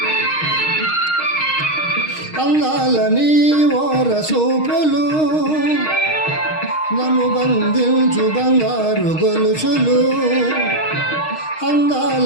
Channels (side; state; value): right; late; 6.4 ms